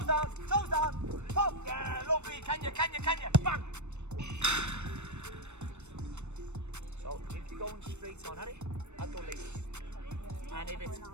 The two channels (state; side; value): late; left; 0.82 ms